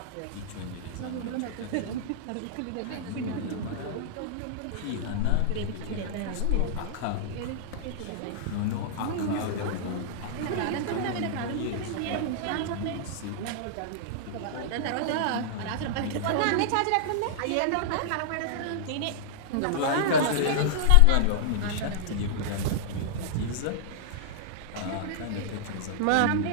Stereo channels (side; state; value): both; different; correlation -0.01